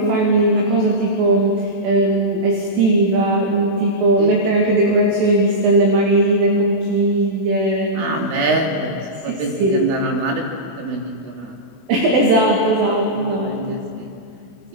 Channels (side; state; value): left; late; 16 ms